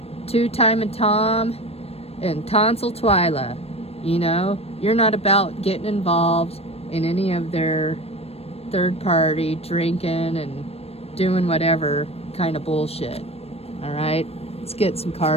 Two Time and Tom and tonsil twila. You know, you're not about getting involved in any of their third party drinking and doing whatever kind of bullshit. All right, let's get some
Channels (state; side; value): late; right; 0.29 ms